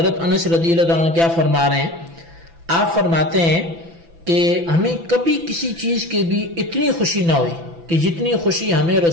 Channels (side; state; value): left; late; 6.0 ms